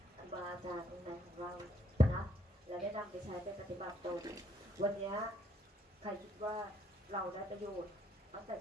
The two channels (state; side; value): normal; both; correlation 0.69